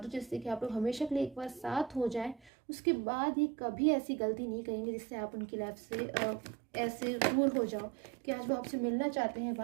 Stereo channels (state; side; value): drops out; left; at 2.5 s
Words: जिससे कि आप लोग हमेशा के लिए एक बार साथ हो जाए। उसके बाद ही कभी ऐसी गलती नहीं करेंगे जिससे आप उनकी लाइफ से ऐसे दूर हो जाओ कि आज वो आपसे मिलना चाहते हैं,